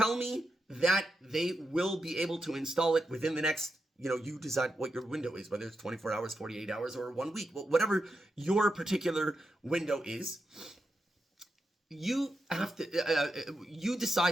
me that they will be able to install it within the next, you decide what your window is, whether it's 24 hours, 48 hours, or 1 week, whatever your particular window is. You have to, you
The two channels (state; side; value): normal; both; correlation 0.86